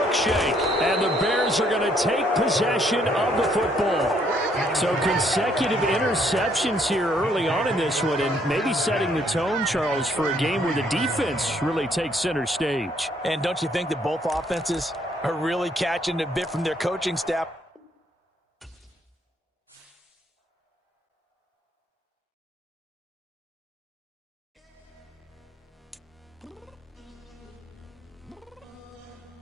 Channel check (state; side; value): normal; both; correlation 0.68